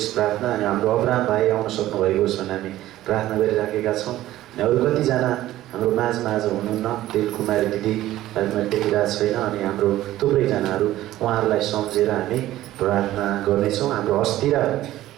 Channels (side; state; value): left; quieter; 14.7 dB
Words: प्रार्थना। अनि हाम्रो अब्राहम भाइ आउन सक्नुभएको होस् भनेर हामी प्रार्थना गरिराखेका छौँ। अनि अरू कतिजना हाम्रो माझमा आज हुनुहुन्न, दिल कुमारी दिदी मैले देखिरहेको छैन। अनि हाम्रो थुप्रैजनाहरू उहाँहरूलाई सम्झेर हामी प्रार्थना गर्नेछौँ। हाम्रो अस्थिरा